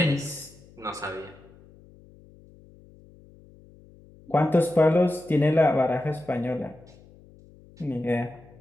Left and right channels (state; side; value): noise; left; hum, 25 dB below the sound